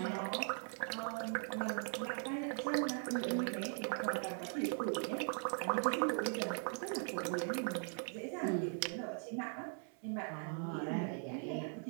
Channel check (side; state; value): left; silent; 51 dB below the other